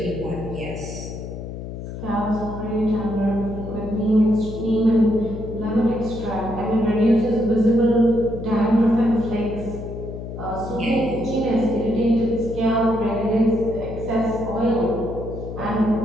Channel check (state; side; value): noise; left; hum, 9 dB below the sound